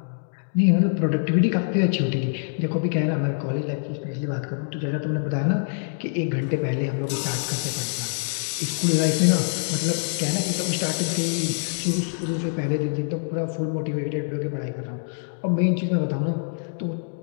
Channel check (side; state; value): right; silent; digital silence